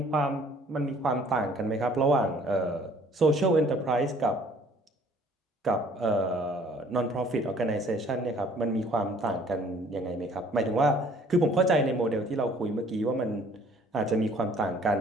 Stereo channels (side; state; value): both; normal; correlation 0.57